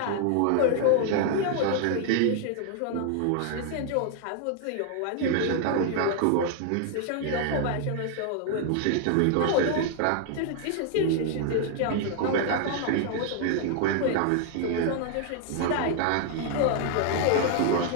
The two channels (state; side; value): different; both; correlation 0.00